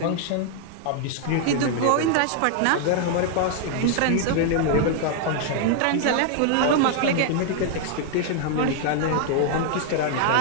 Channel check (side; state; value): both; different; correlation 0.00